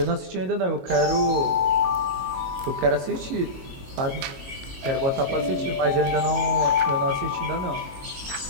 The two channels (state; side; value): late; left; 22 ms